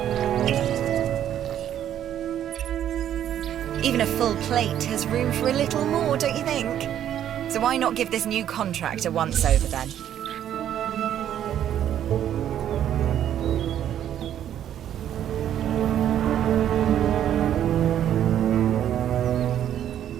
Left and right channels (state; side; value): quieter; left; 10.6 dB